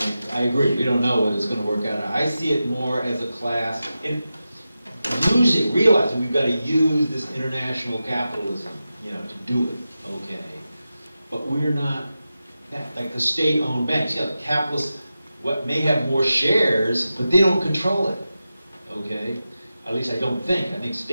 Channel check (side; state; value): both; inverted; correlation -0.92